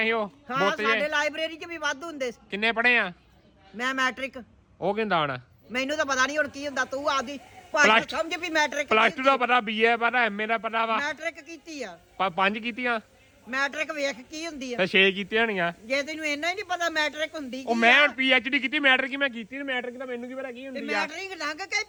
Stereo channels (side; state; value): both; identical; correlation 1.00